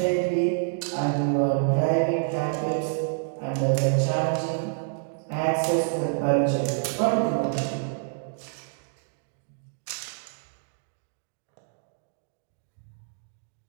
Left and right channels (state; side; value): silent; left; digital silence